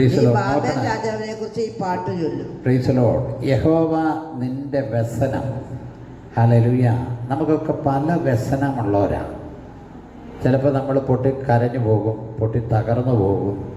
നീ ബാബേൽ രാജാവിനെ കുറിച്ച് ഈ പാട്ട് ചൊല്ലും. Price the Lord. യഹോവ നിന്റെ വ്യസനം. ഹല്ലേലൂയ. നമുക്കൊക്കെ പല വ്യസനമുള്ളവരാണ്. ചിലപ്പോൾ നമ്മൾ പൊട്ടി കരഞ്ഞു പോകും, പൊട്ടി തകർന്നു പോകും.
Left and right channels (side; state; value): both; identical; correlation 1.00